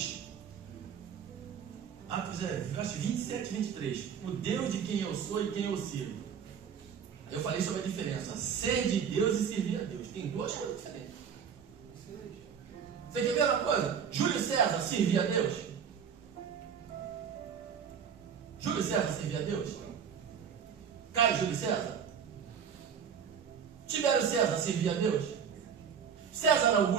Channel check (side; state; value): left; quieter; 7.4 dB